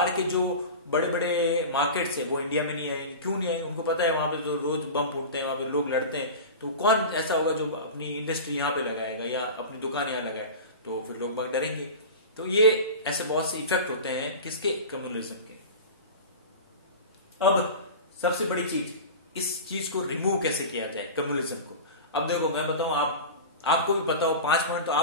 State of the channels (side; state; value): both; inverted; correlation -0.30